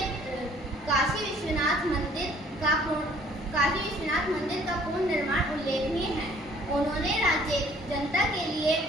काशी विश्वनाथ मंदिर का पूर्ण निर्माण उल्लेखनीय है। उन्होंने राज्य जनता के लिए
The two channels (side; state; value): both; normal; correlation 0.58